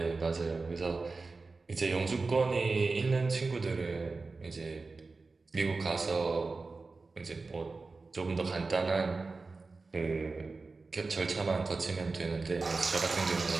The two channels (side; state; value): left; quieter; 3.9 dB